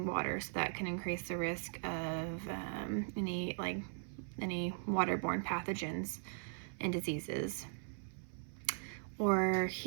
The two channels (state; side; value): silent; left; 51 dB below the other